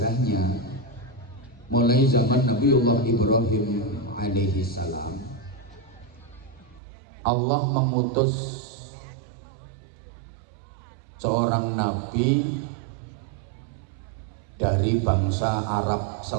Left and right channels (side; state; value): left; drops out; at 6.8 s